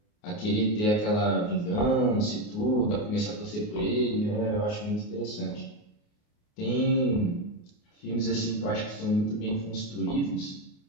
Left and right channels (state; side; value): late; right; 28 ms